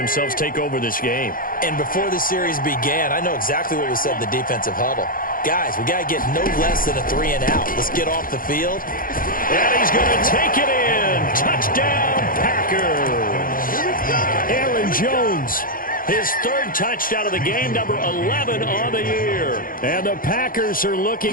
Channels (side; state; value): right; late; 0.41 ms